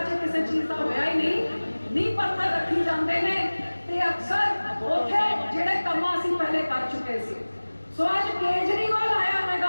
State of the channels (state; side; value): inverted; both; correlation -1.00